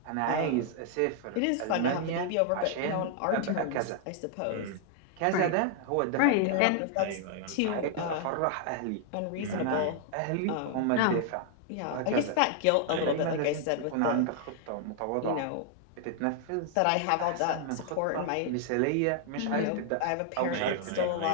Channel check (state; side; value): different; both; correlation 0.00